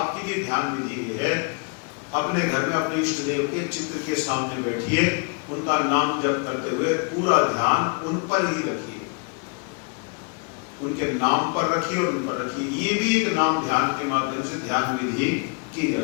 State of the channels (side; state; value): right; quieter; 34.7 dB